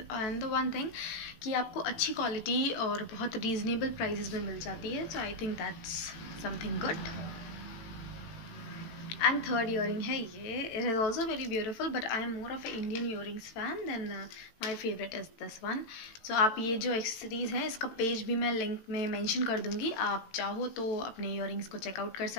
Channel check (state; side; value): late; right; 18 ms